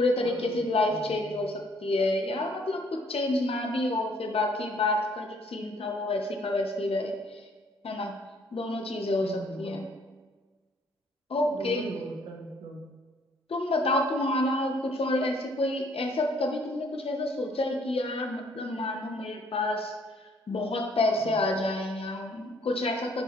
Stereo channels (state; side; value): normal; both; correlation 0.63